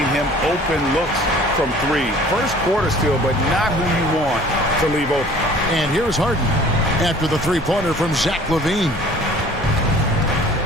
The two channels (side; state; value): both; normal; correlation 0.49